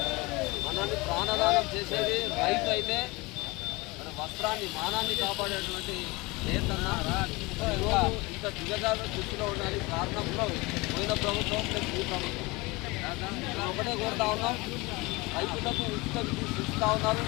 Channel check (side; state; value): right; quieter; 24.0 dB